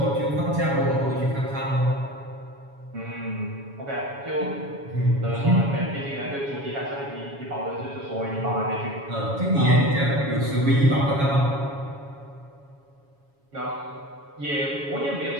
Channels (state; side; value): late; left; 7.2 ms